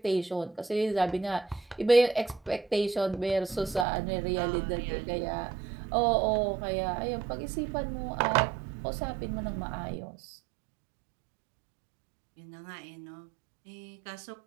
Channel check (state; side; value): drops out; left; at 3.9 s